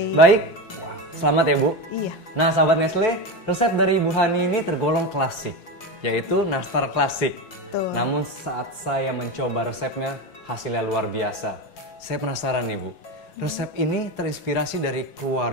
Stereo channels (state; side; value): late; right; 5.8 ms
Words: Baik. Wah, selamat ya Bu. Iya. Nah sahabat Nestle, resep dari Ibu Hani ini tergolong klasik, yaitu nastar klasik. Betul. Namun saat saya mencoba resepnya, hasilnya luar biasa. Saya penasaran nih Bu, resep ini terinspirasi dari